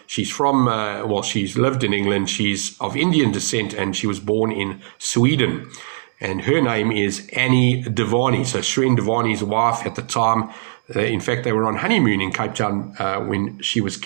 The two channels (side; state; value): left; silent; digital silence